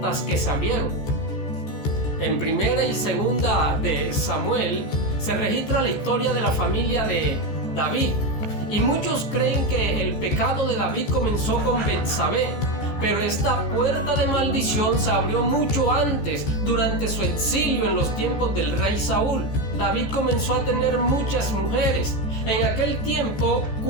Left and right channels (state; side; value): late; right; 14 ms